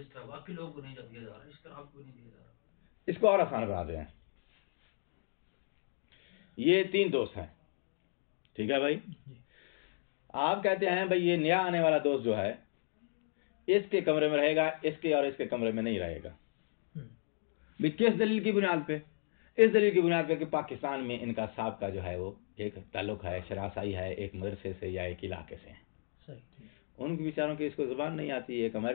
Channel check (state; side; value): silent; right; digital silence